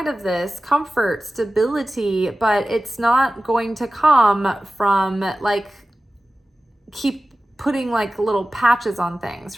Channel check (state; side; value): normal; both; correlation 0.95